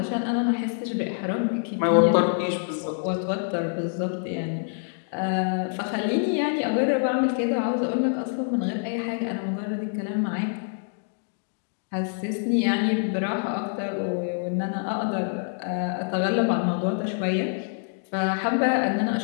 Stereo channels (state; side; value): silent; right; digital silence